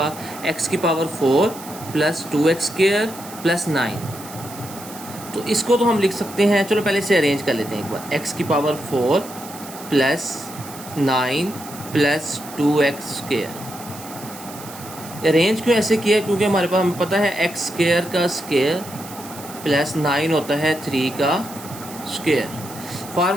x⁴ + 2x² + 9। तो इसको तो हम लिख सकते हैं, चलो पहले से अरेंज कर लेते हैं एक बार, x⁴ + 9 + 2x²। अरेंज क्यों ऐसे किया, क्योंकि हमारे पास हमें पता है x² का स्क्वायर प्लस 9 होता है 3 का स्क्वायर।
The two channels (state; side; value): noise; right; hiss, 15 dB below the sound